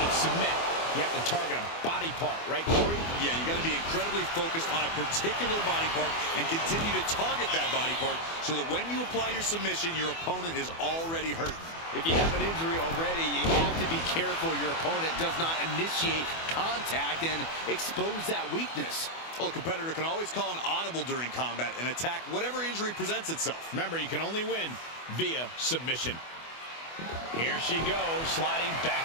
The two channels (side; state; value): right; late; 24 ms